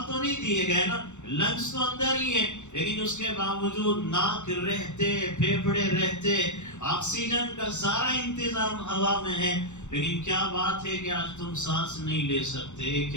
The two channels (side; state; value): right; late; 0.84 ms